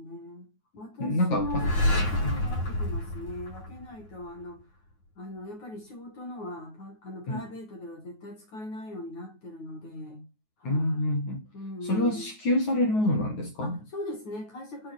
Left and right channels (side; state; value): right; late; 9.4 ms